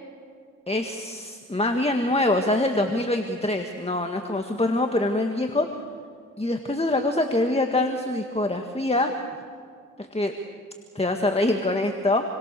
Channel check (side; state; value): both; normal; correlation 0.48